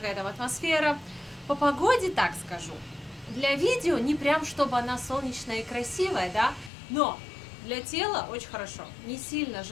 там атмосфера. По погоде, так скажу, для видео не прям чтобы она солнечная и красивая, да, но для тела очень хорошо. Не сильно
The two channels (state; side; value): drops out; right; at 6.7 s